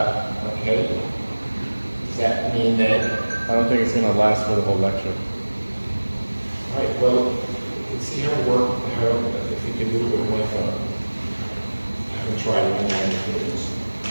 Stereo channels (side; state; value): both; inverted; correlation -1.00